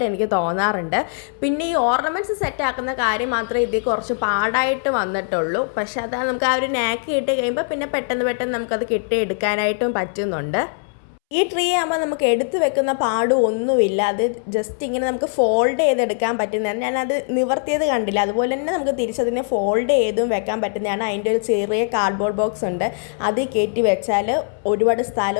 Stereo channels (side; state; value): right; silent; 65 dB below the other